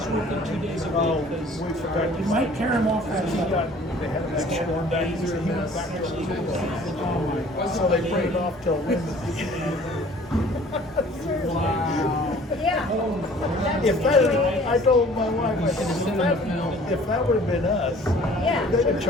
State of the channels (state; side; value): normal; both; correlation 0.51